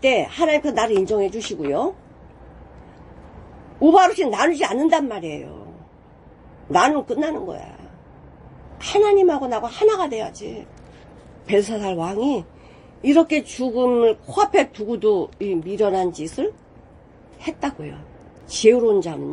하나님께서 나를 인정해 주시고요. 우바르신 나누지 않는단 말이에요. 나누면 끝나는 거야. 하나님하고 나하고 하나가 돼야지. 벨사살 왕이 이렇게 죽음을 코앞에 두고도 이 미련한 짓을 했다고요. 지혜로운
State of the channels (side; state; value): both; identical; correlation 1.00